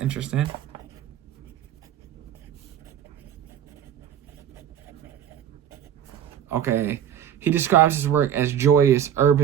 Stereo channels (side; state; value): left; quieter; 9.7 dB